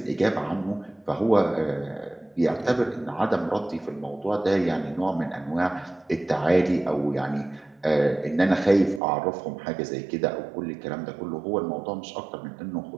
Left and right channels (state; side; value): drops out; left; at 9.0 s